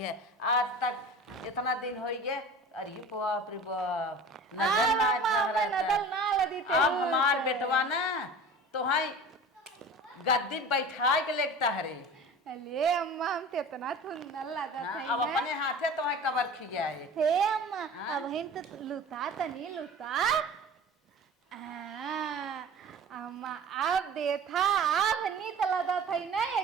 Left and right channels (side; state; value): both; normal; correlation 0.39